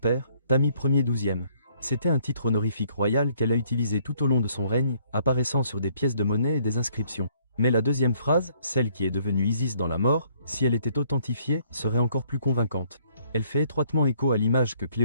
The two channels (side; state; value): both; inverted; correlation -0.65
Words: Tami Ier XIIe. C'était un titre honorifique royal qu'elle a utilisé tout au long de son règne, apparaissant sur des pièces de monnaie et des inscriptions. Mais la deuxième phrase, celle qui est devenue Isis dans la mort, si elle était authentifiée, serait encore plus convaincante. Elle fait étroitement écho à l'image que